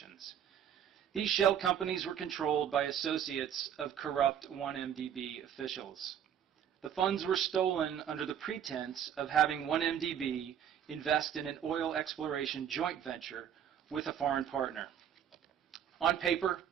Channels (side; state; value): left; quieter; 9.2 dB